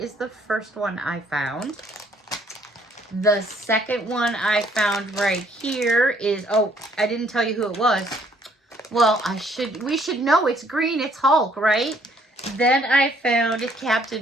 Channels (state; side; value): normal; both; correlation 0.64